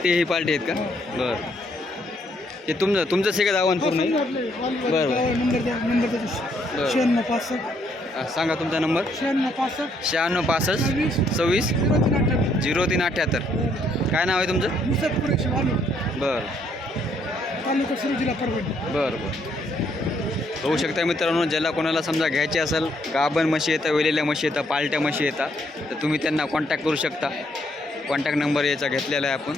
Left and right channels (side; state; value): both; normal; correlation 0.71